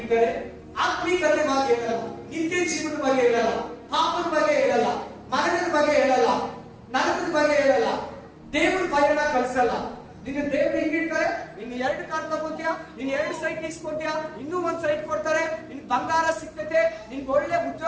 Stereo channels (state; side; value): identical; both; correlation 1.00